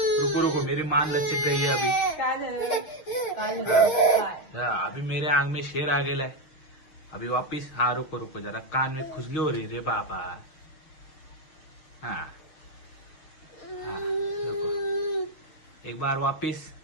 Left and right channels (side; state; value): right; late; 6.8 ms